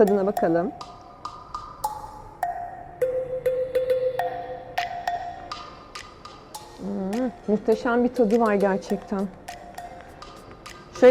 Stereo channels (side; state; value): both; identical; correlation 1.00